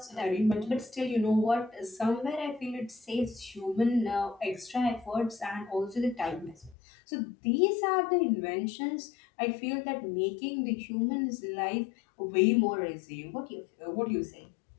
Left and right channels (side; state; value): right; drops out; at 6.8 s